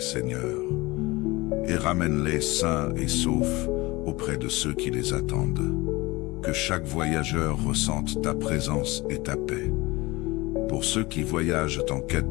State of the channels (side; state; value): right; quieter; 21.9 dB